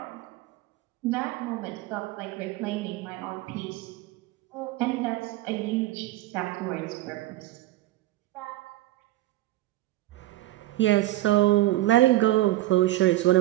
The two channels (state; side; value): quieter; left; 16.3 dB